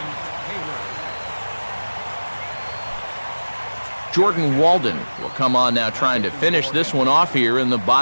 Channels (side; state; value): both; inverted; correlation -1.00